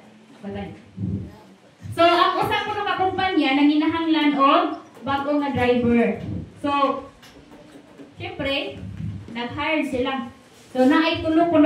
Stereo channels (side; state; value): both; identical; correlation 1.00